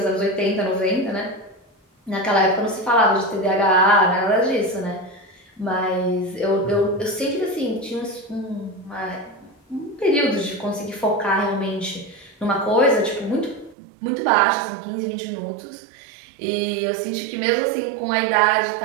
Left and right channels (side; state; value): left; drops out; at 13.8 s